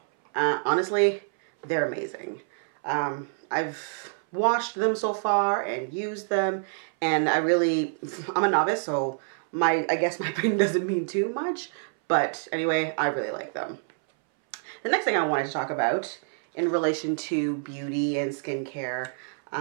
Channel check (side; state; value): left; silent; 60 dB below the other